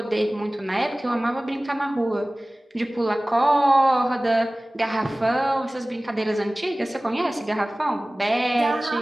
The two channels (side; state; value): both; normal; correlation 0.98